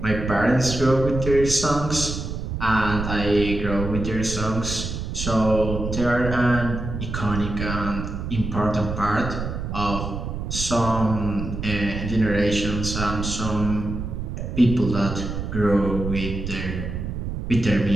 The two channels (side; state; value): right; noise; rumble, 5 dB below the sound